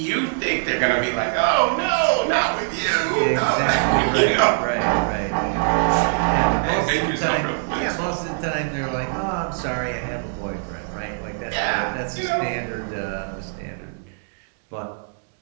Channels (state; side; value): silent; left; 64 dB below the other